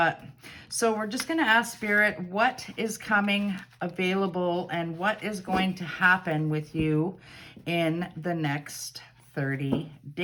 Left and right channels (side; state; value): both; identical; correlation 1.00